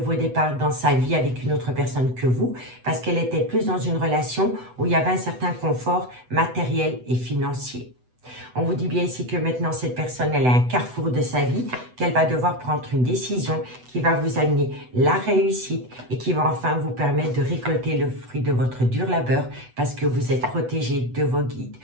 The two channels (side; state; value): left; late; 8.0 ms